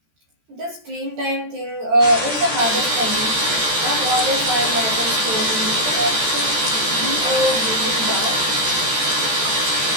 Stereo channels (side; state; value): left; late; 13 ms